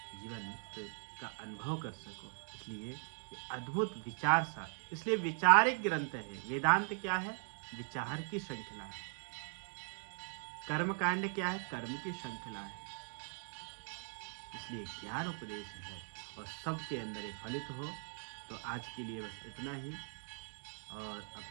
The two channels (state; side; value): silent; left; 51 dB below the other